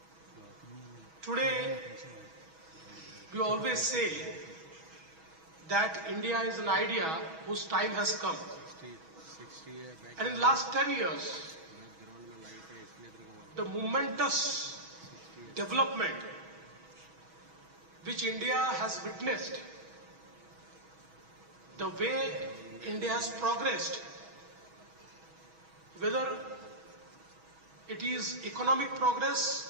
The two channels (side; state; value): left; late; 6.2 ms